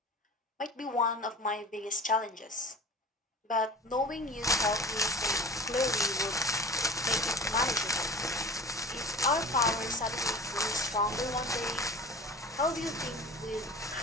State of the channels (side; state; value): both; normal; correlation 0.39